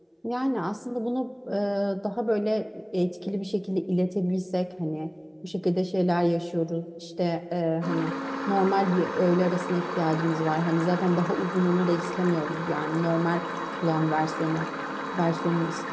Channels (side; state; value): both; identical; correlation 1.00